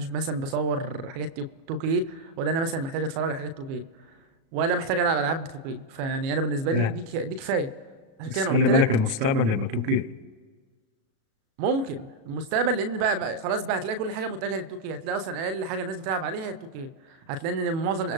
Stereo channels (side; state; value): left; late; 37 ms